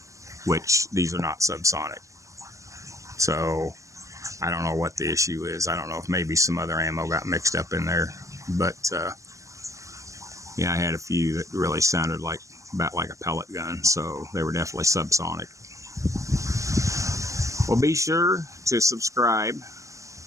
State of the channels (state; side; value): late; left; 0.15 ms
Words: which these are not subsonic. So I don't know what the issue is. I don't know if maybe some other ammo got mixed up in there, but yeah, I had a few that really sounded like about like a pellet gun, so they were definitely subsonic. Well, be sure to subscribe.